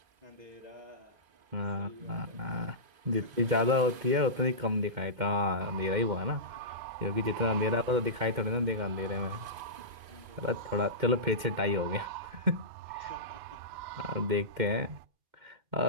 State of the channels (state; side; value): late; left; 2.1 ms